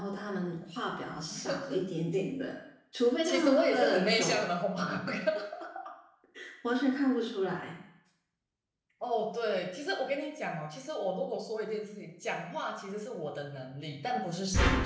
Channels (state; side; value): identical; both; correlation 1.00